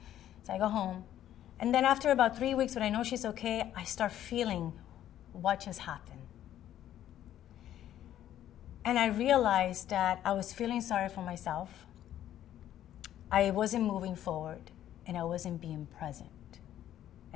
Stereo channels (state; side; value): quieter; right; 11.7 dB